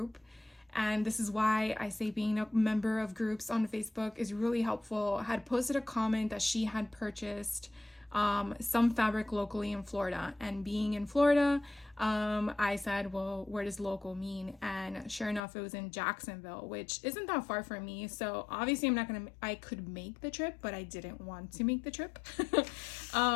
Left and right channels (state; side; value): drops out; right; at 15.4 s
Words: and this is why I say being a member of groups on Facebook is really helpful, had posted a comment that she had purchased some fabric locally in Florida. And being in Florida, I said, well, where does local mean? And sure enough, it was in Jacksonville, which isn't that far from me. So obviously I could make the trip, but I didn't want to make the trip.